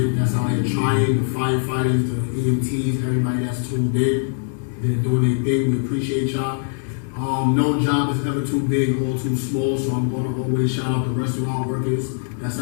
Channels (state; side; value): silent; right; 64 dB below the other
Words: that's out here trying, the firefighters, the EMTs, everybody that's tuned in, they're doing their thing. We appreciate y'all. No job is ever too big or too small, so I'm going to always shout out the restaurant workers that's